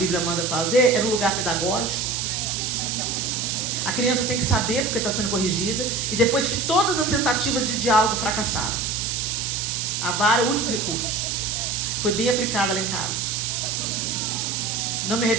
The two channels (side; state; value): right; noise; hiss, 1 dB below the sound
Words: manda fazer é no lugar pedagógico. A criança tem que saber porque está sendo corrigida. E depois de todas as tentativas de diálogo fracassaram, a vara é o último recurso. Foi bem aplicada lá em casa. Não me